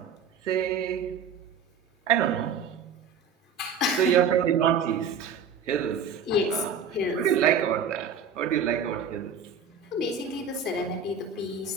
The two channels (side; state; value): left; quieter; 5.6 dB